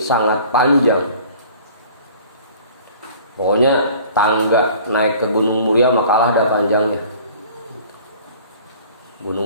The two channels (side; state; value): both; inverted; correlation -0.48